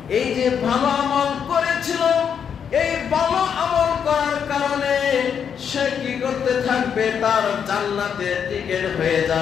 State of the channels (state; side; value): quieter; right; 7.6 dB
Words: এই যে ভালো আমল করেছিল, এই ভালো আমল করার কারণে সে কি করতে থাকবে? তার জান্নাতে টিকেট হয়ে